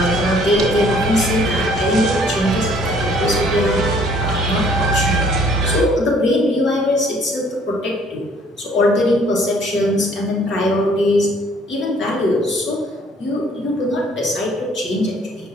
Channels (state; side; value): normal; both; correlation 0.59